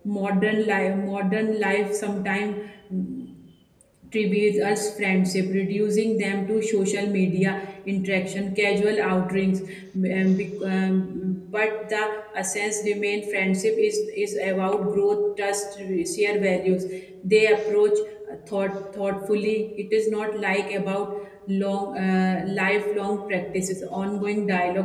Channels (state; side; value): identical; both; correlation 1.00